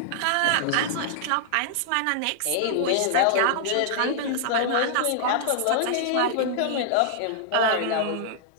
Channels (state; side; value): different; both; correlation -0.01